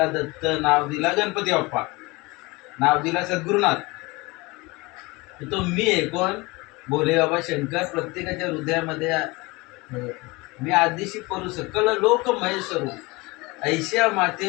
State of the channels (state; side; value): quieter; right; 23.9 dB